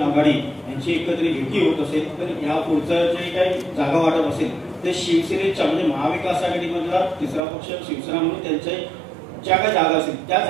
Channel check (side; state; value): left; drops out; at 7.4 s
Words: आघाडी यांची एकत्रित युती होत असेल तर या पुढचं जे काही जागा वाटप असेल ते शिवसेनेच्या म्हणजे महाविकास आघाडीमधला तिसरा पक्ष शिवसेना म्हणून त्यांच्या ज्या काही जागा असतील त्या